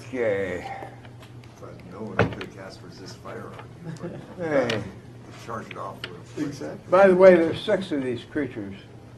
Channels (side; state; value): both; identical; correlation 1.00